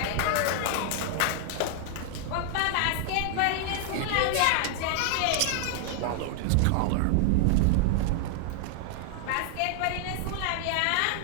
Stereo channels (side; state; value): both; different; correlation 0.00